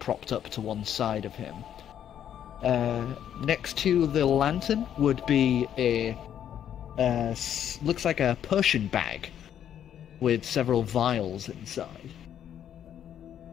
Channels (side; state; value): right; quieter; 9.8 dB